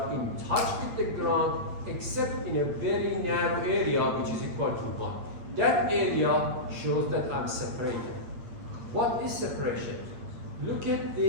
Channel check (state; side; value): late; left; 8.7 ms